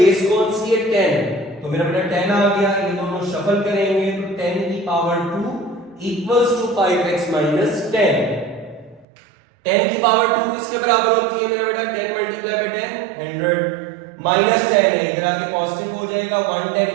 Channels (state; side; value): drops out; left; at 9.1 s